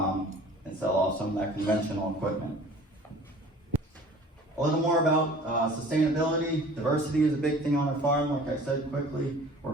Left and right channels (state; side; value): normal; both; correlation 0.46